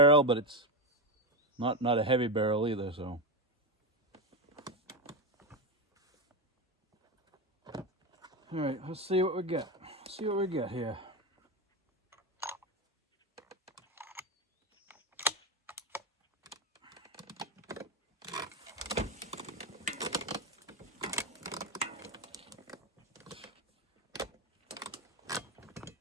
but it's not a heavy barrel either, so. All right, let's see what we get. See what we get here.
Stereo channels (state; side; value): normal; both; correlation 0.13